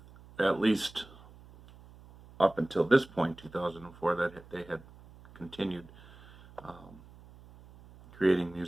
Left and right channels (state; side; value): noise; right; hum, 22 dB below the sound